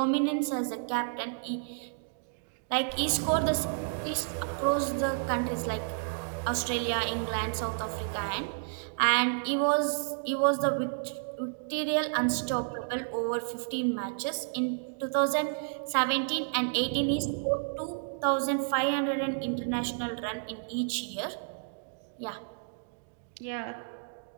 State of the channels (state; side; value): silent; left; digital silence